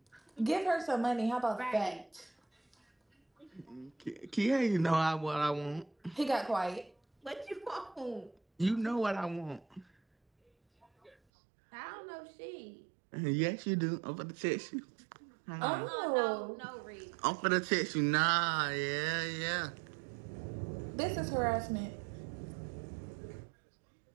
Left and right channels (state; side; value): drops out; left; at 11.2 s